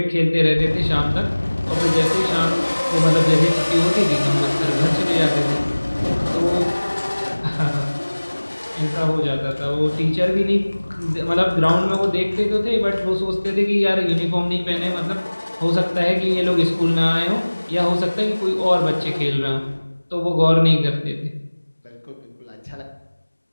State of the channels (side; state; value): both; inverted; correlation -1.00